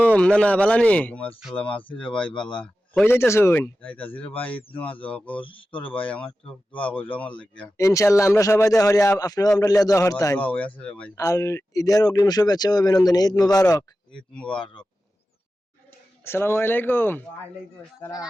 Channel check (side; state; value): both; normal; correlation 0.93